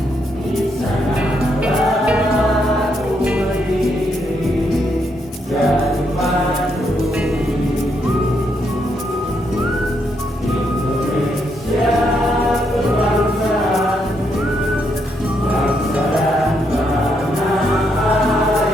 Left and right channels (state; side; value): normal; both; correlation 0.77